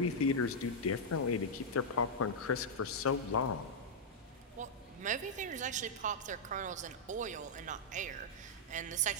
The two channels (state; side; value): normal; both; correlation -0.06